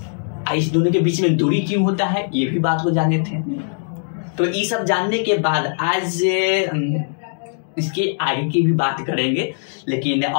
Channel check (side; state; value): right; silent; digital silence